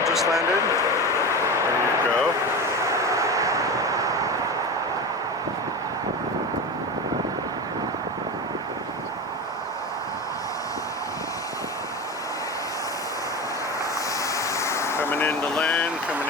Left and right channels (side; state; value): both; normal; correlation 0.24